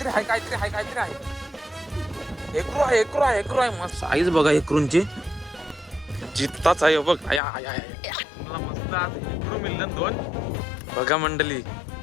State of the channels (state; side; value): drops out; right; at 7.4 s